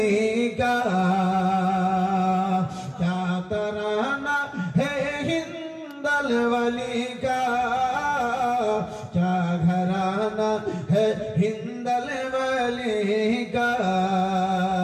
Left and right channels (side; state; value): both; identical; correlation 1.00